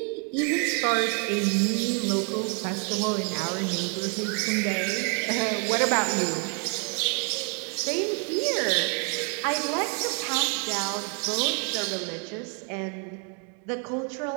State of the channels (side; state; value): left; quieter; 38.8 dB